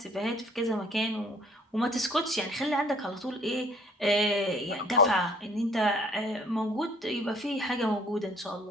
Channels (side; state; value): both; normal; correlation 0.57